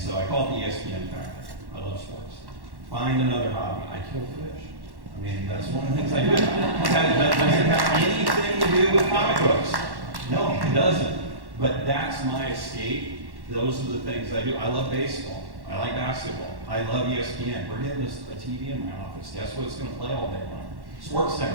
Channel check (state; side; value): late; left; 1.1 ms